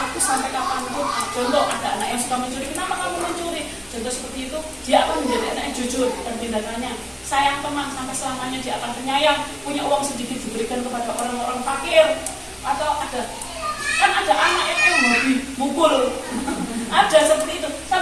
sampai kapanpun, contoh ada anak yang suka mencuri, kenapa kamu mencuri? Contoh seperti itu, dia akan menjadi anak yang jujur dan tindakannya. Sayang teman, sampai selamanya dia akan penyayang, punya uang sedikit diberikan kepada orang-orang fakir. Atau ada anak yang hobi mukul. Ada seperti itu.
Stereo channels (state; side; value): identical; both; correlation 1.00